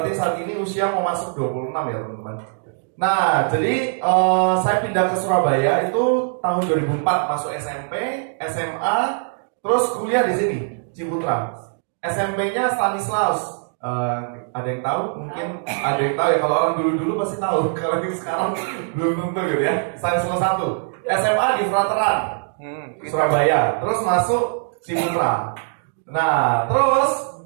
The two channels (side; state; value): left; silent; digital silence